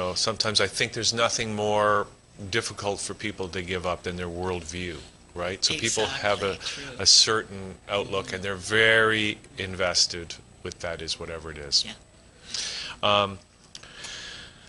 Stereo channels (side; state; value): both; identical; correlation 1.00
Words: sometimes I think there's nothing more difficult for people to give up than their worldview, right? So people have a certain outlook, and they're very invested with that, is whatever it is. Yeah.